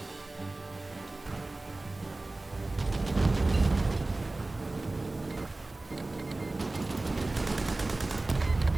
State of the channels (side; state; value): left; quieter; 3.0 dB